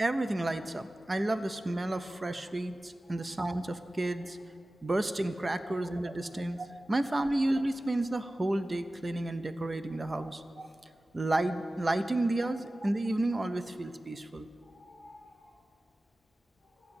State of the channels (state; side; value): normal; both; correlation 0.96